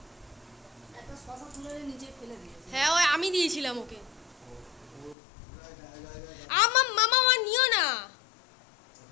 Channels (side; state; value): right; drops out; at 5.2 s